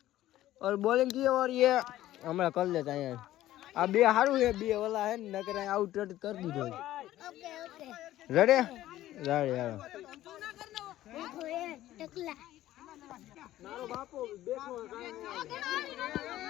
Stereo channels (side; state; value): right; quieter; 14.3 dB